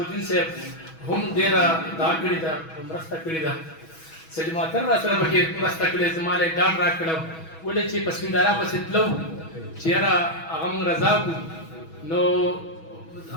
صاحب هم ډېره دا کړې ده مرسته کړې ده. سید ماتر را سره پکې مرسته کړې زما له ډاډ راکړو ولې چې په سپنداره پسې تلو چې یاره هغه موږ رضا کړو نو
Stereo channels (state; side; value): late; right; 6.2 ms